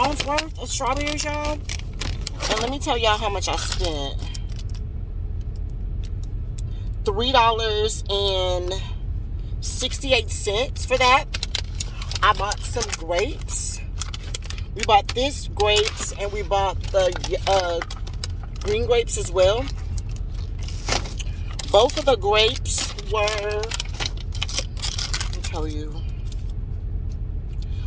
worth of strawberries, y'all. And let me tell y'all how much I spent. $3.68 for that. I bought some grapes. We bought this grapes and we bought the green grapes as well. Both of the grapes were, let me tell you.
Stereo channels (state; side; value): identical; both; correlation 1.00